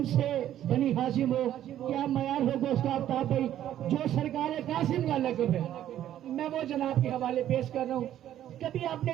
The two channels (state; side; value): quieter; left; 11.7 dB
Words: بنی ہاشم ہو، کیا معیار ہوگا اس کا آفتاب بھائی. جو سرکار قاسم کا لقب ہے میں وہ جناب کے حوالے پیش کر رہا ہوں. کبھی آپ نے